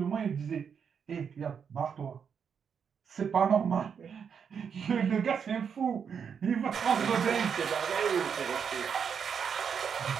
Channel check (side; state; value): left; quieter; 7.0 dB